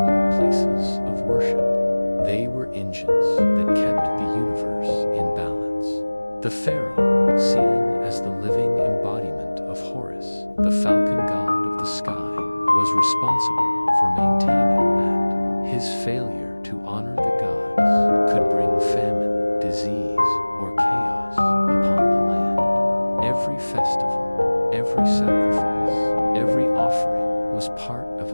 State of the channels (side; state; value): both; inverted; correlation -1.00